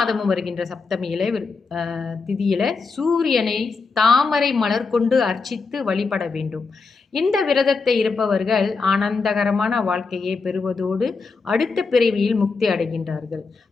வருகின்ற சப்தமியில திதியில சூரியனை தாமரை மலர் கொண்டு அர்ச்சித்து வழிபட வேண்டும். இந்த விரதத்தை இருப்பவர்கள் ஆனந்தகரமான வாழ்க்கையை பெறுவதோடு அடுத்த பிறவியில் முக்தி அடைகின்றார்கள்.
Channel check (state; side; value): quieter; right; 4.5 dB